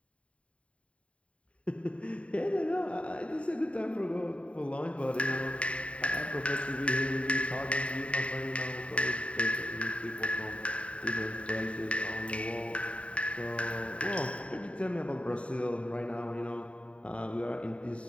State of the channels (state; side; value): late; right; 0.062 ms